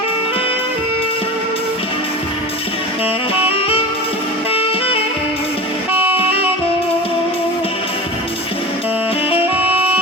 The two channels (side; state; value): both; normal; correlation 0.31